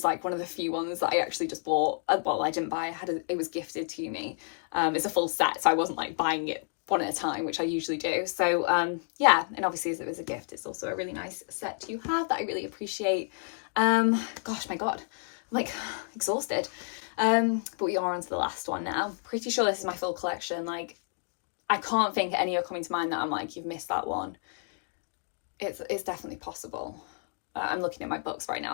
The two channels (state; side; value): silent; right; 58 dB below the other